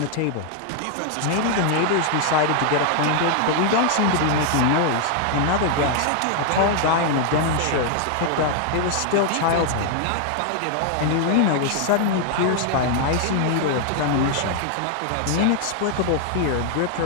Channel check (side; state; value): both; different; correlation 0.00